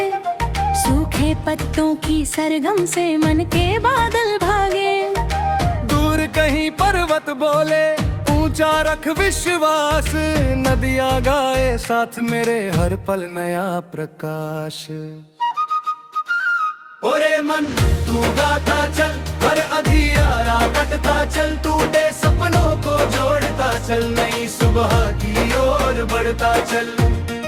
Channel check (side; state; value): both; identical; correlation 1.00